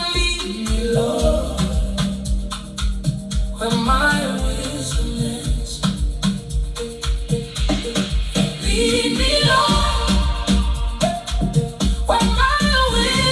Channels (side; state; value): both; identical; correlation 1.00